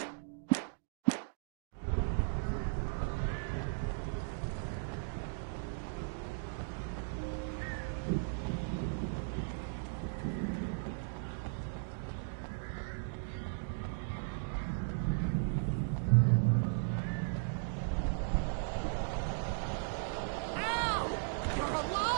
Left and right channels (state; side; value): silent; left; digital silence